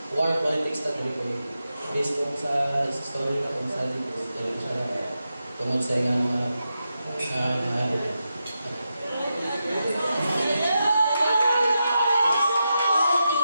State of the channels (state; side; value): inverted; both; correlation -0.88